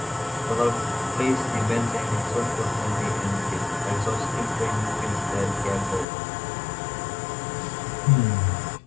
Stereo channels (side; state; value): right; drops out; at 6.1 s